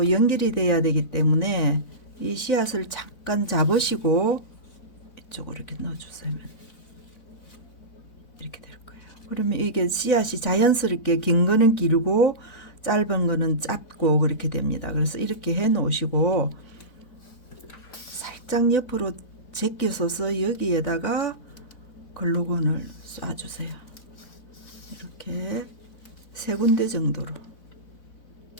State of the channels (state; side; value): late; right; 4.0 ms